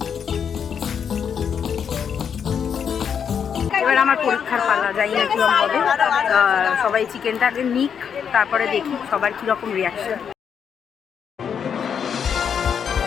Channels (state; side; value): quieter; right; 7.5 dB